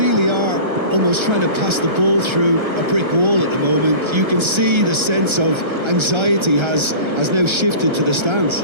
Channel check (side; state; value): left; late; 1.3 ms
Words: are almost trying to pass the ball through a brick wall at the moment. You can see the sense of anxiety has now shifted to the stands.